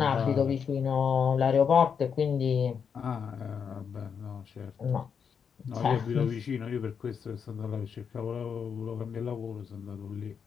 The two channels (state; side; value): quieter; right; 6.8 dB